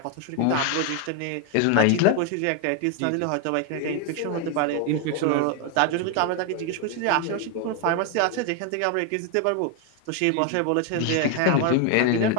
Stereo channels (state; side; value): different; both; correlation 0.01